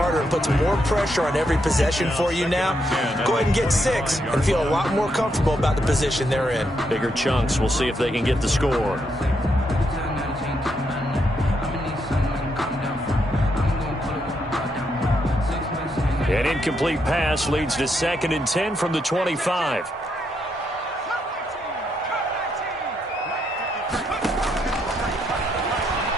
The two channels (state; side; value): normal; both; correlation 0.78